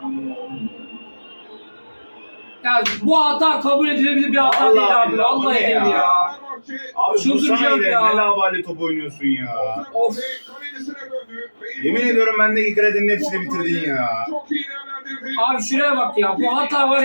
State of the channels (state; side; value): inverted; both; correlation -1.00